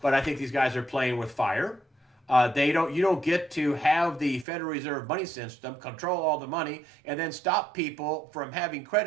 But I think these guys are playing with fire. You don't get to have the Federal Reserve money system control all the money and then stop people from having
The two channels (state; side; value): drops out; left; at 4.5 s